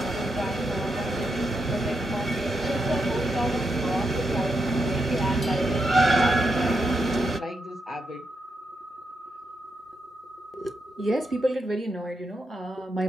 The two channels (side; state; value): both; normal; correlation 0.83